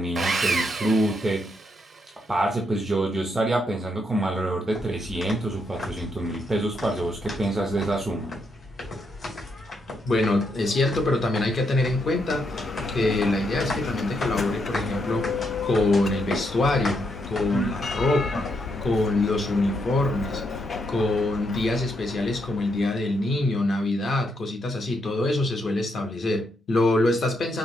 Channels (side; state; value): both; normal; correlation 0.78